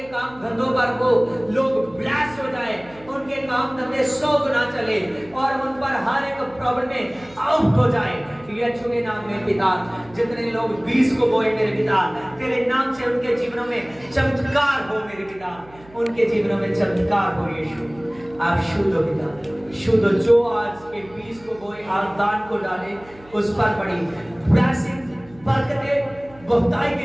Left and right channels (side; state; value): right; noise; hum, 24 dB below the sound